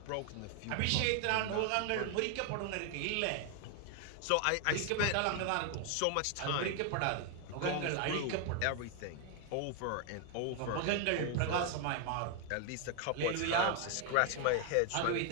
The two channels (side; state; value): both; different; correlation 0.00